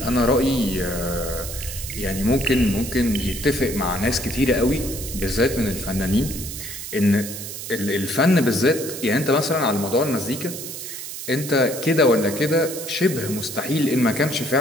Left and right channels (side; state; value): right; noise; hiss, 9 dB below the sound